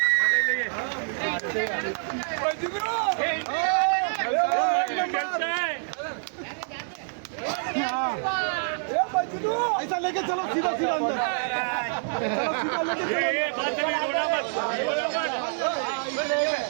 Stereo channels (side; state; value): left; silent; 60 dB below the other